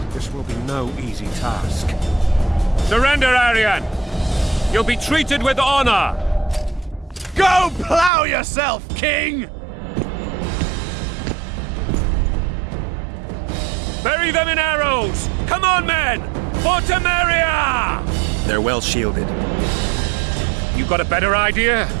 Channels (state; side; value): drops out; left; at 8.1 s